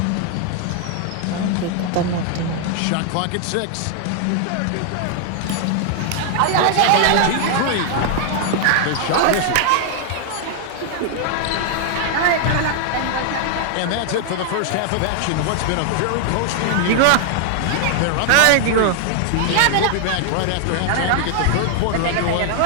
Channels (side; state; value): both; different; correlation 0.00